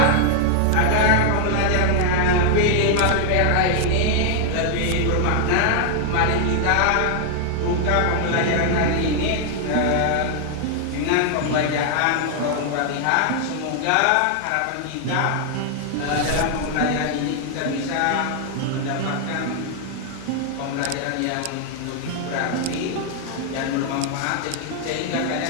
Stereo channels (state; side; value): different; both; correlation 0.00